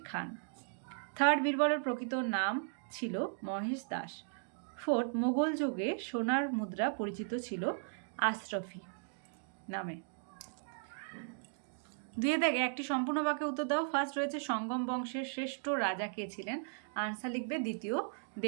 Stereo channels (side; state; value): left; silent; digital silence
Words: খান। থার্ড, বীরবলের প্রকৃত নাম ছিল মহেশ দাস। ফোর্থ, মোগল যুগে সোনার মুদ্রা পরিচিত ছিল আশরফি নামে। দুয়ে দেখে একটি সম্পূর্ণ বাক্যে উত্তর দাও। ফার্স্ট রয়েছে সঙ্গম বংশের শ্রেষ্ঠ রাজা কে ছিলেন? আনসার লিখবে দ্বিতীয়